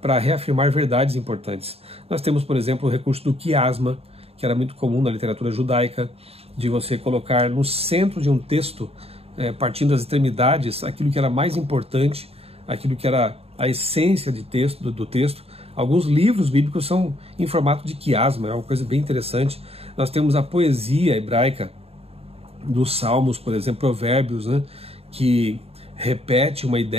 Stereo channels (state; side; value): late; left; 0.29 ms